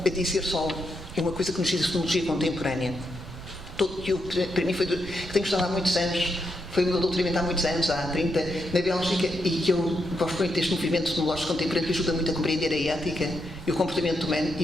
a dizer só uma coisa que nos diz a fenomenologia contemporânea. Para mim foi que tenho estudado há muitos anos, foi o meu doutoramento há muitos anos, há 30, na Bélgica, e que eu gosto muito deste movimento fenomenológico contemporâneo que ajuda muito a compreender a ética e o comportamento humano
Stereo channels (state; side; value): noise; right; rumble, 13 dB below the sound